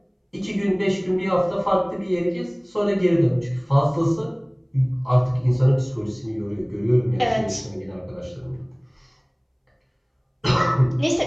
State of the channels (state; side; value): identical; both; correlation 1.00